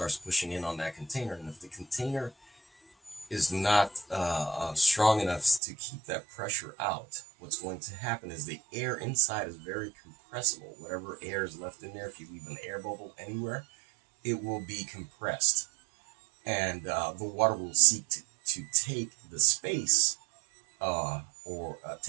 pushing in on that container, and if the container is not strong enough to keep that pressure out, what's going to happen is the air inside is very compressible. Whatever air is left in there, if you leave an air bubble anywhere, it will be compressed, and the water will seek to take the space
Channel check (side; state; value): left; drops out; at 5.6 s